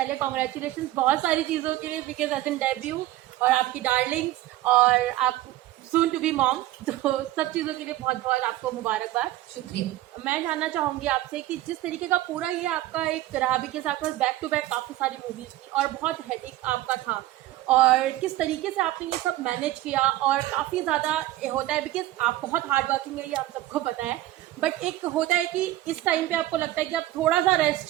congratulation बहुत सारी चीज़ों के लिए, बिकॉज एज एन डेब्यू और आपकी डार्लिंग्स और आप सून टू बी मॉम, तो सब चीज़ों के लिए बहुत बहुत आपको मुबारकबाद. शुक्रिया. मैं जानना चाहूँगी आपसे कि जिस तरीके का पूरा ये आपका एक रहा, बिकॉज आपके पास बैक टू बैक काफ़ी सारी मूवीज़ थी और बहुत हेडेक आपका था, और किस तरीके से आपने ये सब मैनेज किया, और काफ़ी ज़्यादा होता है बिकॉज आप बहुत हार्ड वर्किंग है, ये आप सबको पता है, बट एक होता है कि इस टाइम पे आपको लगता है कि आप थोड़ा सा रेस्ट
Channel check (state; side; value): quieter; left; 15.6 dB